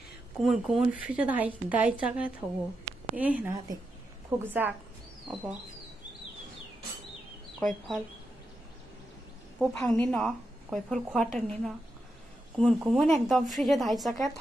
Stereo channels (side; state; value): both; normal; correlation 0.86